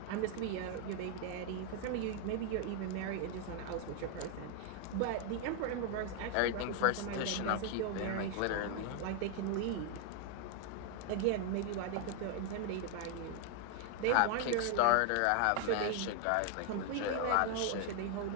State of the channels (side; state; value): both; different; correlation 0.00